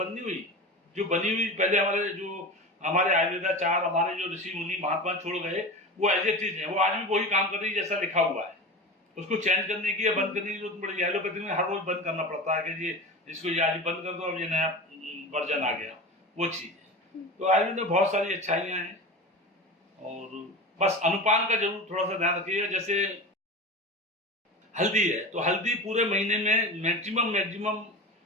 नहीं हुई। जो बनी हुई पहले हमारे आयुर्वेदाचार, हमारे जो ऋषि मुनि महात्मा छोड़ गए, वो एज इट इज है। वो आज भी वही काम कर रही है जैसा लिखा हुआ है। उसको चेंज करने की या बंद करने की जरूरत पड़ेगी। एलोपैथी में हर रोज बंद करना पड़ता है कि ये इसको ये आज बंद कर दो, अब ये नया वर्जन आ गया, वो चीज है। तो आयुर्वेद में बहुत सारी अच्छाइयां हैं, और बस अनुपान का जरूर थोड़ा सा ध्यान रखिएगा। जैसे हल्दी है, तो हल्दी पूरे महीने में मैक्सिमम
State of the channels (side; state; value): both; normal; correlation 0.29